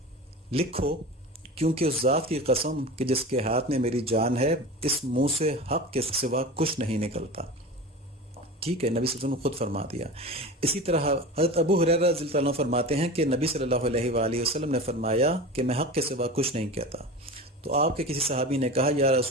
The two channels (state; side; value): normal; both; correlation 0.31